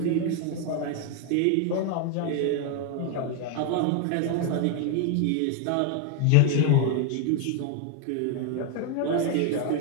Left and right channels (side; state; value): both; different; correlation 0.01